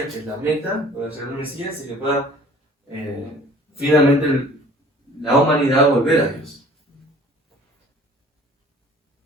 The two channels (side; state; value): both; normal; correlation 0.50